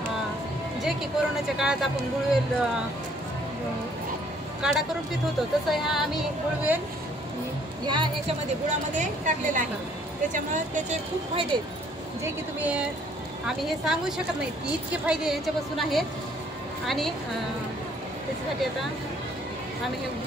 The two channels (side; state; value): both; normal; correlation 0.62